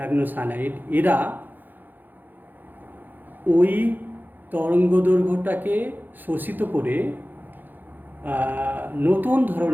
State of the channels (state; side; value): late; left; 0.087 ms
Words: এরা ওই তরঙ্গদৈর্ঘ্যটাকে শোষিত করে নতুন